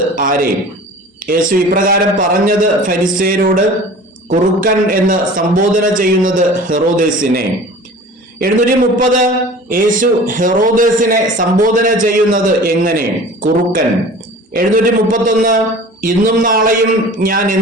ആരെ? യേശു ഇപ്രകാരം പറഞ്ഞത് ഫരിസേയരോട്, കുറുക്കൻ എന്ന് സംബോധന ചെയ്യുന്നത് ഹെറോദേസിനെ. 730 യേശു ഹെറോദേസിനെ സംബോധന ചെയ്യുന്നത് എങ്ങനെ? കുറുക്കൻ. 731 ഇന്നും നാളെയും ഞാൻ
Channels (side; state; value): both; normal; correlation 0.42